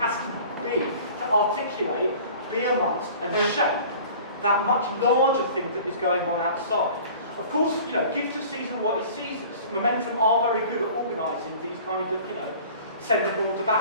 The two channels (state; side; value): inverted; both; correlation -0.45